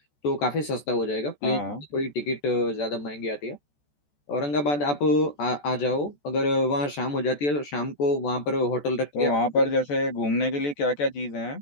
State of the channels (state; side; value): late; right; 14 ms